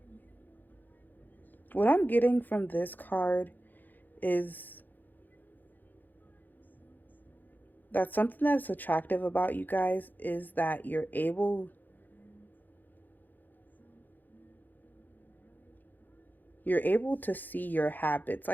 What I'm getting from this card is that something that's attractive about you guys is that you're able to see your habits.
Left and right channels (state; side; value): late; right; 0.086 ms